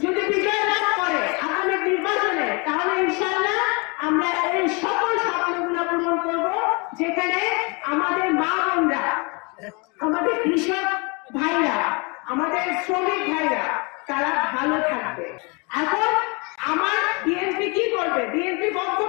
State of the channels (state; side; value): quieter; right; 30.4 dB